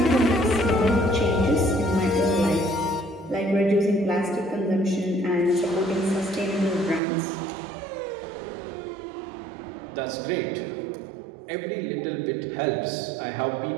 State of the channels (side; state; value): left; drops out; at 7.0 s